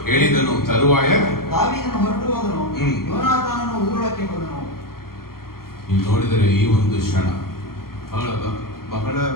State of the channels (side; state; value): right; late; 0.93 ms